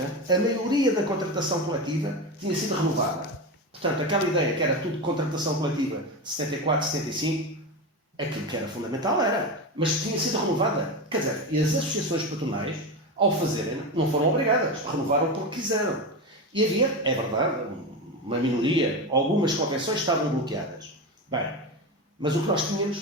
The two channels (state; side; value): normal; both; correlation 0.19